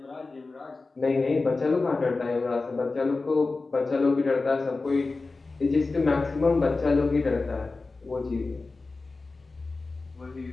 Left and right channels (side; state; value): right; quieter; 3.7 dB